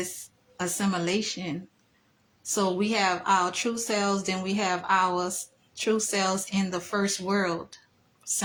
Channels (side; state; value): both; identical; correlation 1.00